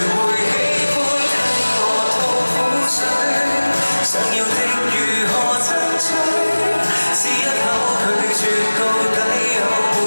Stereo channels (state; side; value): inverted; both; correlation -1.00